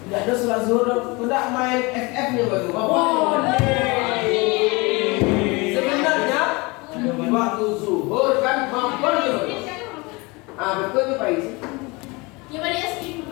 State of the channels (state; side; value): quieter; right; 25.8 dB